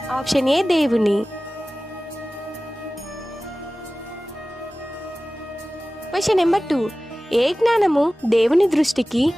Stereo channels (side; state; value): both; normal; correlation 0.97